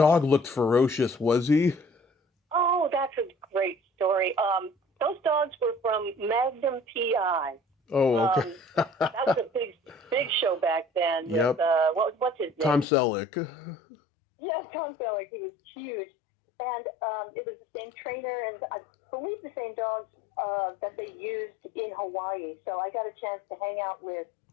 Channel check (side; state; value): right; drops out; at 12.9 s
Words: looked ferocious, was he? Oh, that's a great story. Those dogs were from Magnum PI. Oh, okay. That was a big show back then. Yep. With, what's his name? Tom Selleck. Yeah, Tom Selleck. He was huge. And it was the same trainer and I believe the same dogs that they used in Hawaii. So I got a chance to hang out with